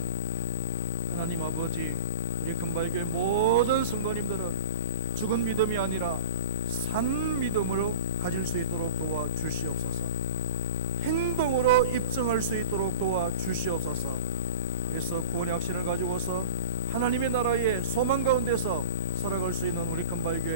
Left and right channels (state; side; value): inverted; both; correlation -0.36